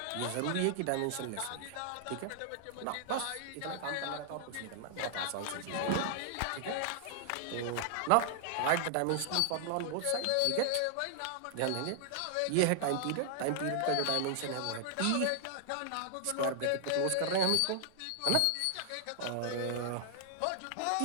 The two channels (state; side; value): different; both; correlation 0.00